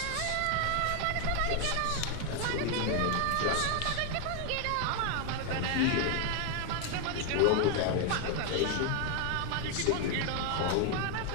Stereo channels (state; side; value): different; both; correlation 0.01